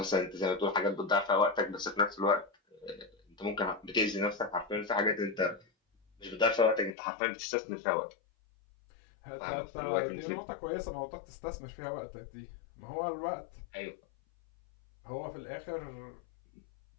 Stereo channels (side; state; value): right; drops out; at 7.0 s